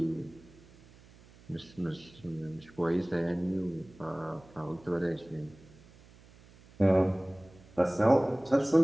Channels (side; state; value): right; noise; hum, 24 dB below the sound